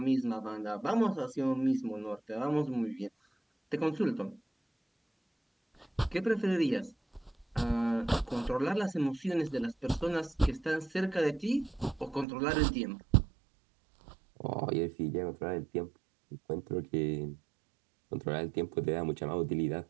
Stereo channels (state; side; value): drops out; left; at 12.2 s